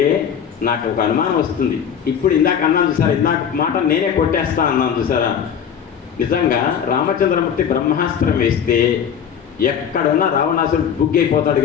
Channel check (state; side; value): quieter; right; 8.1 dB